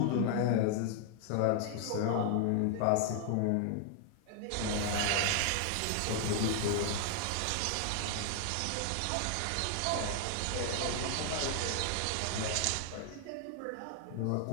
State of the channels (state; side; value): different; both; correlation 0.00